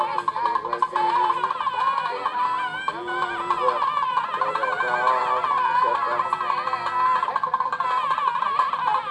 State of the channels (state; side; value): identical; both; correlation 1.00